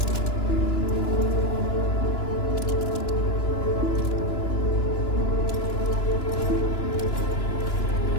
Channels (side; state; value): right; late; 2.9 ms